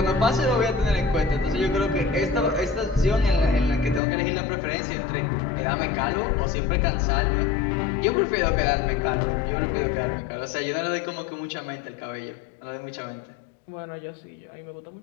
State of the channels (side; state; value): right; drops out; at 4.0 s